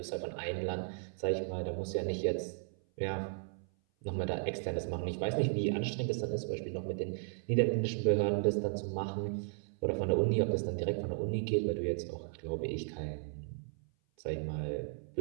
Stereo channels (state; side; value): silent; left; 54 dB below the other